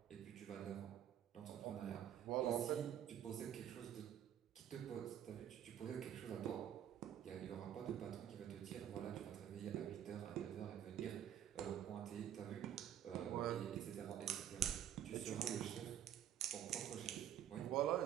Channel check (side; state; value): left; quieter; 10.4 dB